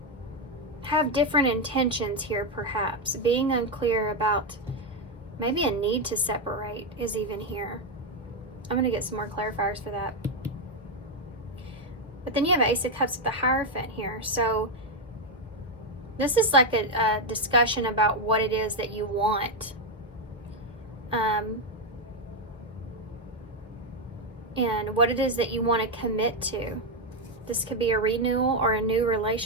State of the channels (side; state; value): both; normal; correlation 0.04